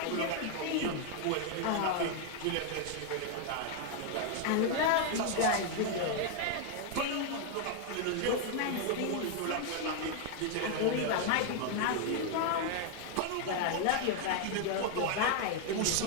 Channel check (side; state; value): both; different; correlation 0.00